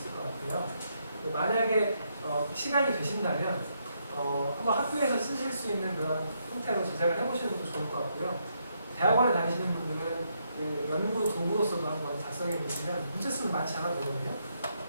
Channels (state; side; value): inverted; both; correlation -0.77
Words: 것 같아요. 만약에 시간이 되신다면 한번 학교에서 쓰실 수 있는 그런 형태로 제작을 해보시는 것도 좋을 것 같고요. 대학원에 다니시는 분들은 그 연구 도구로서도 한번 작성해 보시면 문제 수는 많지 않아 보거든요.